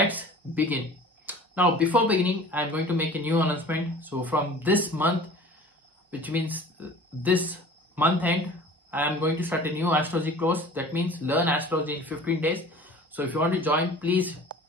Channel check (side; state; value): both; normal; correlation 0.43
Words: begin. Now before beginning, I'm going to make a new announcement. So from this month, which means this month end, I am going to start a new astrology course. That means learn astrology in 15 days. So if you want to join, please